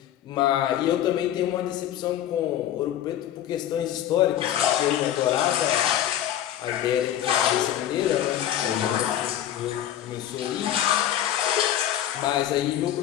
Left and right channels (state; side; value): quieter; right; 11.6 dB